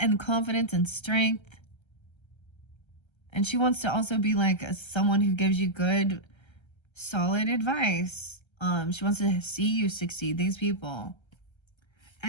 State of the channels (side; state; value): right; late; 1.3 ms